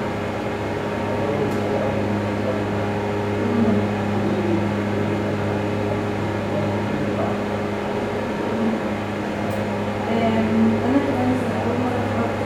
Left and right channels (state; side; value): identical; both; correlation 1.00